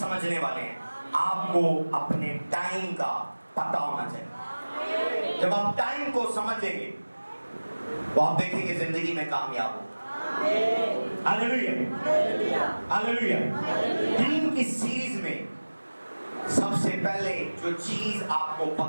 वाले हैं। आपको अपने टाइम का पता होना चाहिए। जब आप टाइम को समझेंगे तो आप देखेंगे जिंदगी में कामयाब हो। Hallelujah, hallelujah. टीम की सीरीज में सबसे पहले जो चीज आपको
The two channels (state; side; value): inverted; both; correlation -1.00